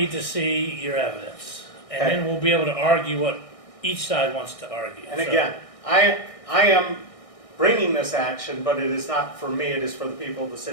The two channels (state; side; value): late; right; 1.6 ms